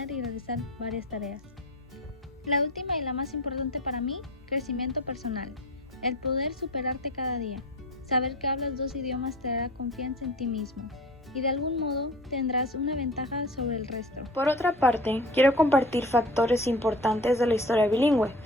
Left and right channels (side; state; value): both; normal; correlation 0.36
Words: y realizar varias tareas. La última y la más importante para mí, crecimiento personal. El poder superarte cada día. Saber que hablas dos idiomas te dará confianza en ti mismo y de algún modo tendrás una ventaja sobre el resto. Por otra parte, quiero compartir factores importantes de la historia bilingüe.